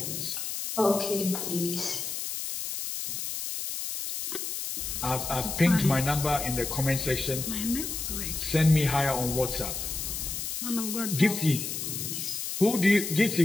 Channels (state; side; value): noise; left; hiss, 4 dB below the sound